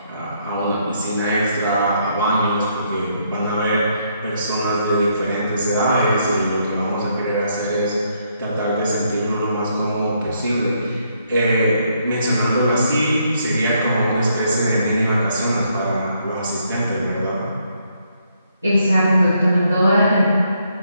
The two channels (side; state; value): both; inverted; correlation -0.73